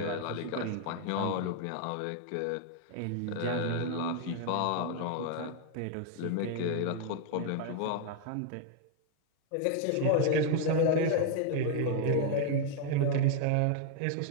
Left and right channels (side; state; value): both; different; correlation 0.00